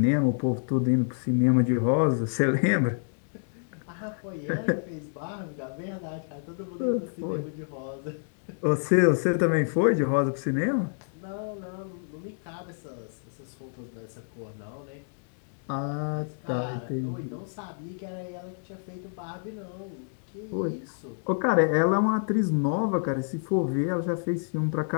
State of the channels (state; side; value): silent; right; digital silence